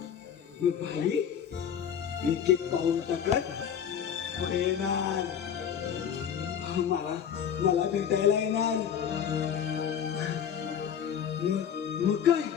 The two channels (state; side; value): quieter; right; 8.4 dB